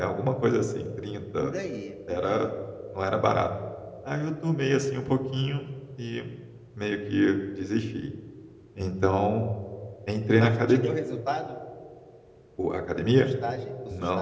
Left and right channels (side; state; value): both; identical; correlation 1.00